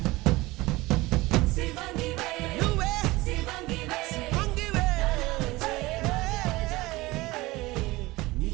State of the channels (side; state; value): left; quieter; 20.5 dB